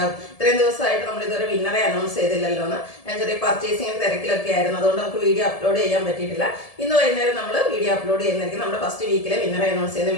ഇത്രയും ദിവസമായിട്ട് നമ്മൾ ഇതുവരെ വിന്നറെ അനൗൺസ് ചെയ്തില്ലല്ലോ എന്ന്. ഞാൻ ചെറിയ പർച്ചേസിംഗ് തിരക്കിലൊക്കെ ആയിരുന്നു, അതുകൊണ്ട് നമുക്ക് വീഡിയോ അപ്ലോഡ് ചെയ്യാൻ പറ്റിയിട്ടില്ല. ഇന്ന് വൈകുന്നേരം നമ്മൾ വീഡിയോ അപ്ലോഡ് ചെയ്യുന്നതായിരിക്കും. നമ്മുടെ ഫസ്റ്റ് വീക്കിലെ വിന്നറെ അനൗൺസ് ചെയ്യുന്ന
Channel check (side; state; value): right; late; 1.7 ms